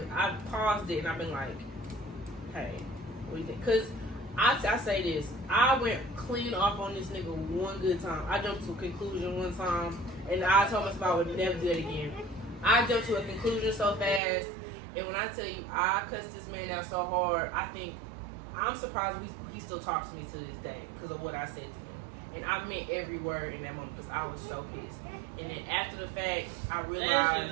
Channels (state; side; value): drops out; left; at 14.2 s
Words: paused it, and I've been like, hey, what do you think? Because I say this, I went clean off on this nigga one good time. I jumped to a conclusion one time, and I told myself I would never do that again. I jumped to a conclusion so fast, and when I tell you I cussed this man out so hard, I'm surprised he still talks to me to this day because of what I said to him. And I meant every word in that moment because I was so pissed. And then after the fact, I